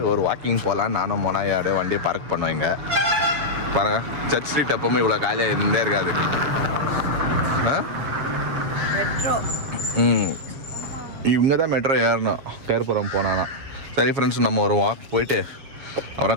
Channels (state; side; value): late; left; 7.4 ms